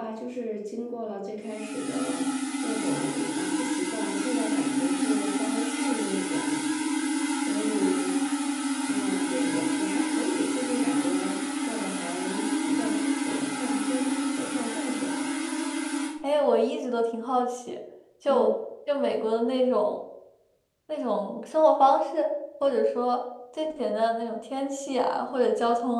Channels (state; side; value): identical; both; correlation 1.00